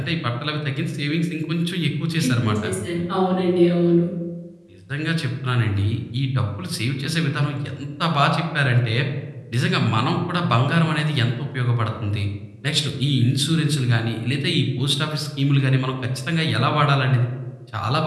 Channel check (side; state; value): both; identical; correlation 1.00